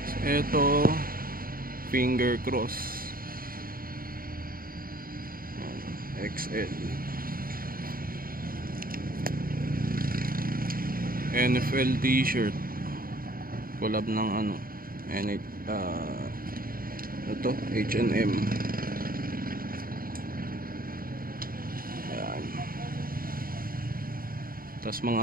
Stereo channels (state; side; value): late; left; 0.42 ms